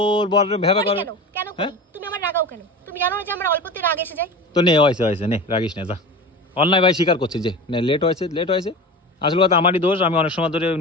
বর ভ্যাবা করে। কেন তুমি আমার রাগাও কেন? তুমি জানো যে আমরা অল্পতে রাগ এসে যাই। তো নে হয়েছে নে রাগিস না, যা। অন্যায় ভাই স্বীকার করছি যে নে লেট হয়েছে। আসল কথা আমারই দোষ, আমি অনেক সময় ধরে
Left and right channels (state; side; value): normal; both; correlation 0.30